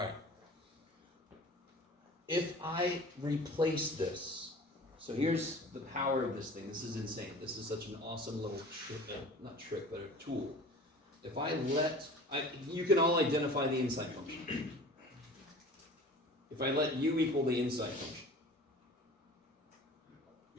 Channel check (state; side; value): normal; both; correlation 0.42